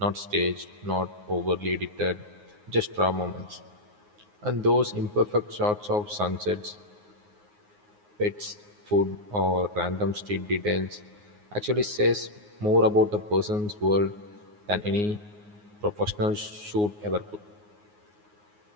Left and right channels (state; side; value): late; left; 9.6 ms